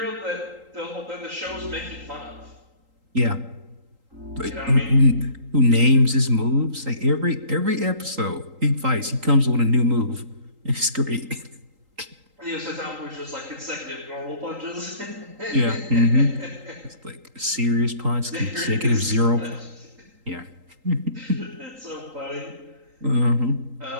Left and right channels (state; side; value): late; left; 3.8 ms